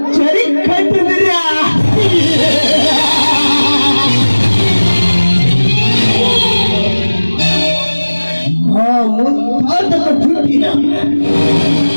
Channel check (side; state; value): both; inverted; correlation -1.00